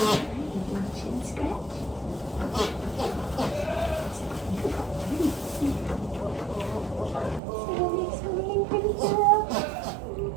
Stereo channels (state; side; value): drops out; left; at 7.4 s